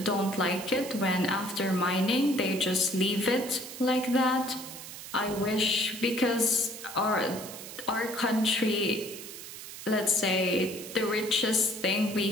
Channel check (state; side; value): noise; right; hiss, 12 dB below the sound